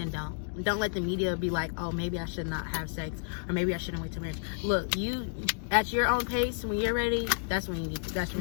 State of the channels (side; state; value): right; silent; digital silence